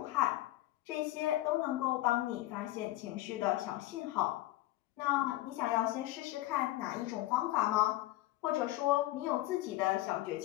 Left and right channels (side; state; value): right; quieter; 16.5 dB